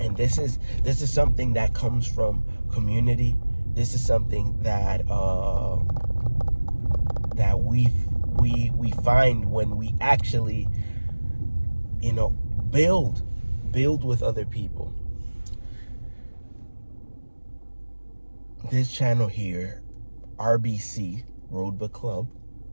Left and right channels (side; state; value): both; inverted; correlation -1.00